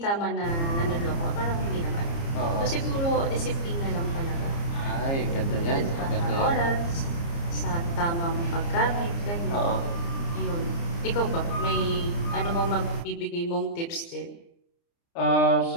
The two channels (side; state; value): right; late; 29 ms